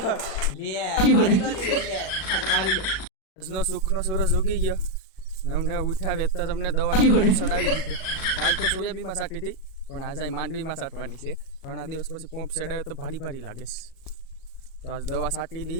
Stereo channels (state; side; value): late; right; 37 ms